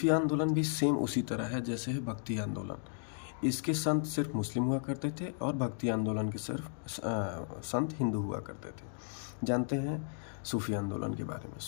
आंदोलन भी सेम उसी तरह है जैसे है भक्ति आंदोलन। इसके संत सिर्फ मुस्लिम हुआ करते थे और भक्ति आंदोलन के सिर्फ संत हिंदू हुआ करते थे। जानते हैं सूफी आंदोलन के बारे में।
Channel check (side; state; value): right; silent; digital silence